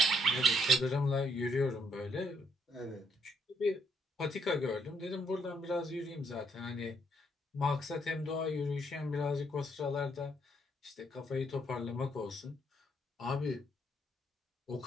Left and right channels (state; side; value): normal; both; correlation 0.72